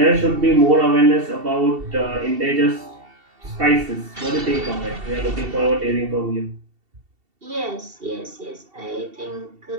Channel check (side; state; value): left; late; 2.7 ms